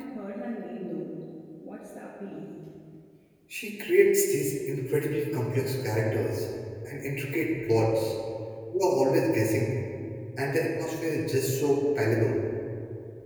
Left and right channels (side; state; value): both; identical; correlation 1.00